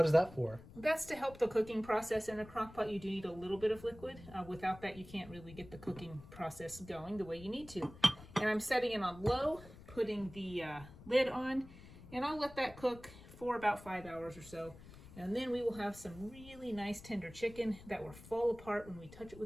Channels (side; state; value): left; noise; rumble, 18 dB below the sound